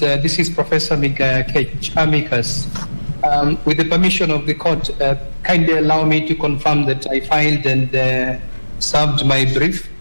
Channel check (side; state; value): both; inverted; correlation -1.00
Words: is Professor Kech, amicus. With the permission of the court, kindly allow me to confirm that I filed and served my brief